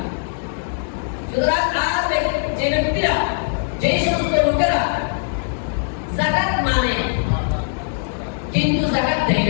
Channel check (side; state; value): right; silent; digital silence